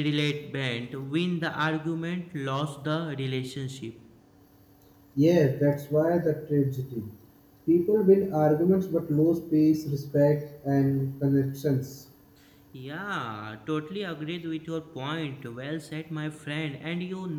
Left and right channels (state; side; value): identical; both; correlation 1.00